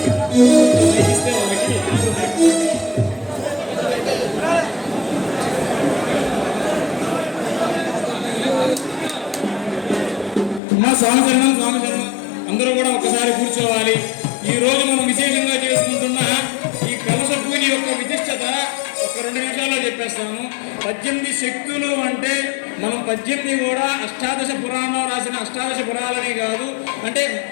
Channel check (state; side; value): drops out; right; at 10.6 s